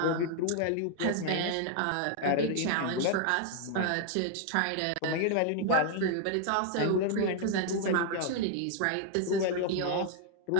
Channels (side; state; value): both; different; correlation 0.00